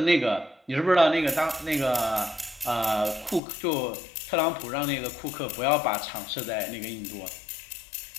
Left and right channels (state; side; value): drops out; right; at 3.4 s